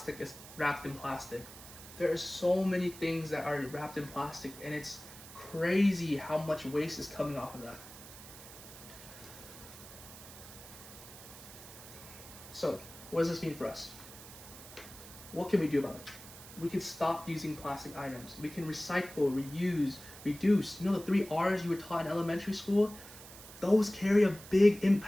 is wrapped in plastic. There are so many things that are wrapped in plastic, and it's crazy how much waste is coming off of that. So, what does this mean for us? What can we do about it? We can stop using plastic items. We can recycle, reuse, reduce. The 3 R's you were taught in elementary school? Those carry a big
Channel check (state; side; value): noise; right; hiss, 16 dB below the sound